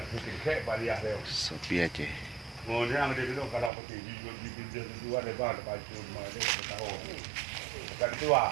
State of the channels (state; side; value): drops out; left; at 3.7 s